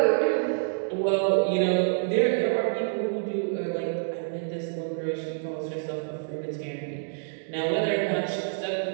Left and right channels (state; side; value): silent; left; digital silence